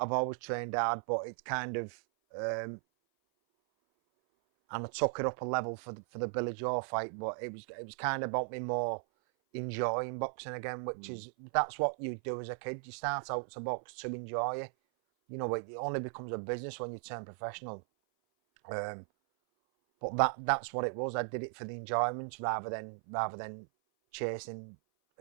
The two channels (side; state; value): left; silent; 53 dB below the other